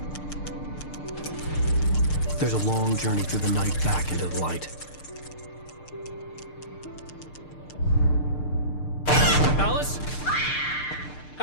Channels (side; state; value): right; late; 6.6 ms